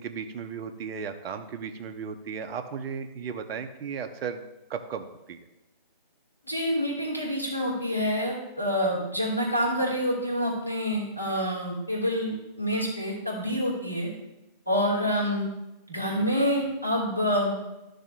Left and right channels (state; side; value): inverted; both; correlation -0.42